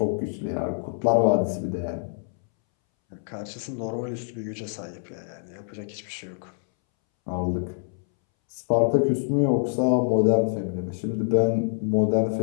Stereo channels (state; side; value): silent; right; 61 dB below the other